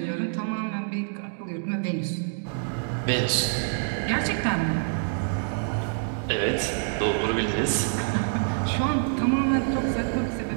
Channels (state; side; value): silent; left; digital silence